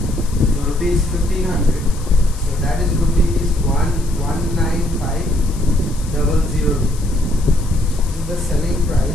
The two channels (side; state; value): left; noise; hiss, 18 dB below the sound